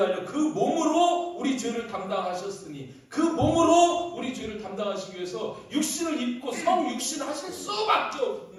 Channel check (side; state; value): both; identical; correlation 1.00